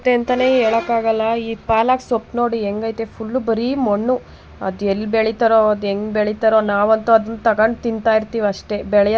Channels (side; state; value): both; identical; correlation 1.00